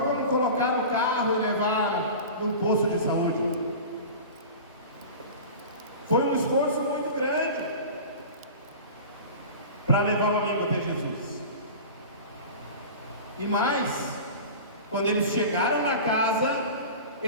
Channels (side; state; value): both; inverted; correlation -0.34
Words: colocar no carro e levar no posto de saúde. Foi um esforço muito grande para levar o amigo até Jesus. E mais, quando eles chegaram na casa,